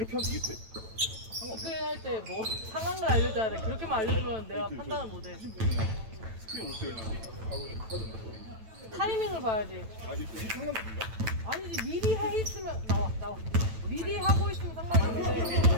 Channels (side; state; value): left; late; 9.1 ms